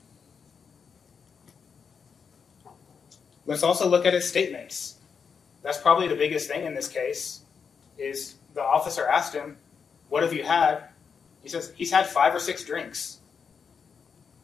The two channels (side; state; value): right; quieter; 6.2 dB